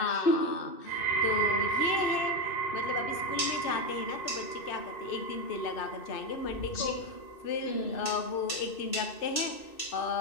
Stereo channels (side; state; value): right; late; 2.6 ms